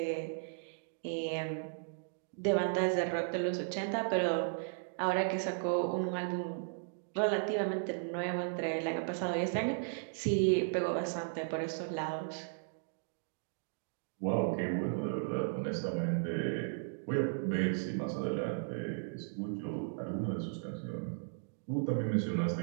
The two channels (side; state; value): left; silent; digital silence